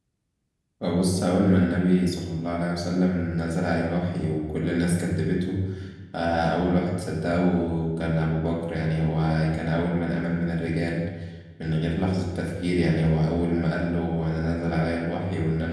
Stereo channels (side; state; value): both; identical; correlation 1.00